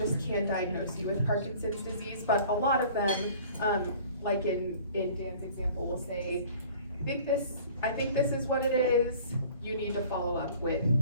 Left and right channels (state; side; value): inverted; both; correlation -0.49